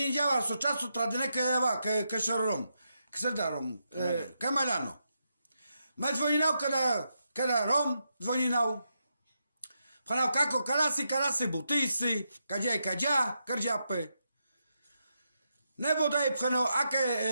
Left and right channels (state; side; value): inverted; both; correlation -0.84